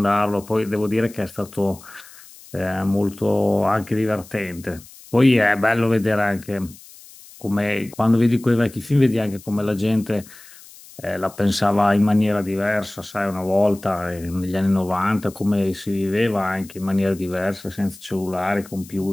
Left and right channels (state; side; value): noise; left; hiss, 21 dB below the sound